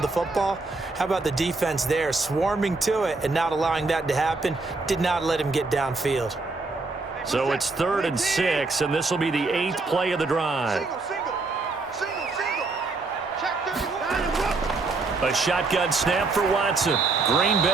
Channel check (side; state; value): left; quieter; 3.7 dB